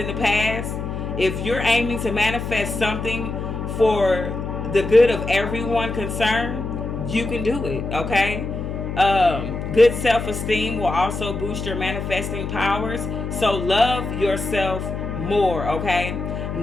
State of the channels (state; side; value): noise; left; hum, 5 dB below the sound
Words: the past, if you're aiming to manifest something for the good of everyone concerned, you can do it, okay? Good self-esteem will also boost your manifesting powers. So love yourself more, okay?